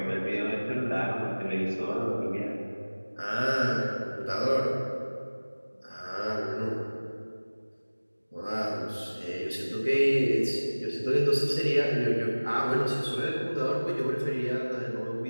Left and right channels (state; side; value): inverted; both; correlation -1.00